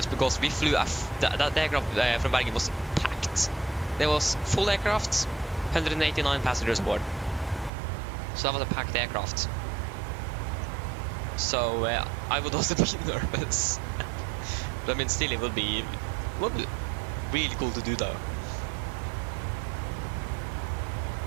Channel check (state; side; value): drops out; left; at 7.7 s